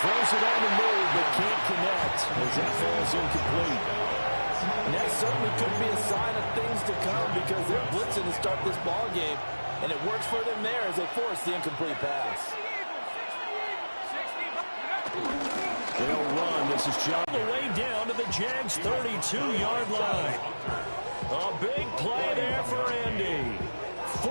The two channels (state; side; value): inverted; both; correlation -1.00